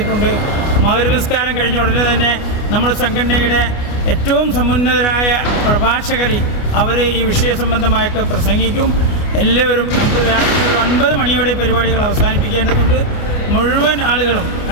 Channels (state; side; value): late; right; 29 ms